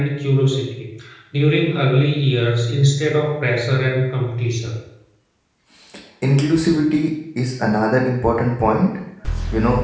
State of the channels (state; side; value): identical; both; correlation 1.00